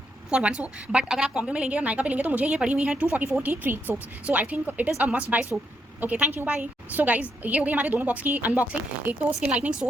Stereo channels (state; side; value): normal; both; correlation 0.78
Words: फॉर 1 सोप, बट अगर आप कॉम्बो में लेंगे और नायका पे लेंगे तो मुझे ये पड़ी हुई है 244 की 3 soaps. So I think it is a must buy soap. Okay, thank you, bye. So guys, ये हो गई हमारे दोनों बॉक्स की अनबॉक्सिंग। एक तो स्किन लाइटनिंग